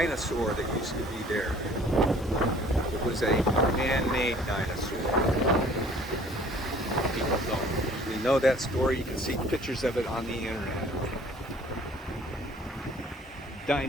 that used to be there. It was a man-made dinosaur. People don't usually know that story. You can see pictures of it on the internet.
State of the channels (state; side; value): normal; both; correlation 0.53